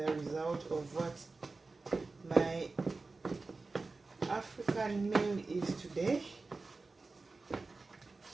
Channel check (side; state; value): left; quieter; 3.7 dB